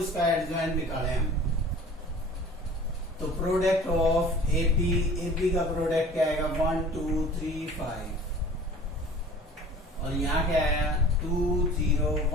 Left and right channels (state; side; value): normal; both; correlation 0.44